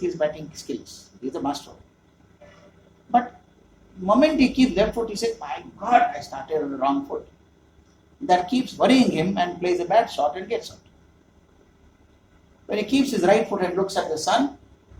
his batting skills. He's a master. But the moment he keeps left foot, he says, my God, I started on the wrong foot. That keeps worrying him and plays a bad shot and gets out. When he keeps his right foot and looks at the sun,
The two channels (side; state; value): both; identical; correlation 1.00